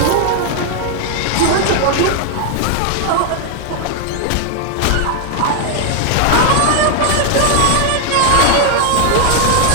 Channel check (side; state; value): both; different; correlation 0.00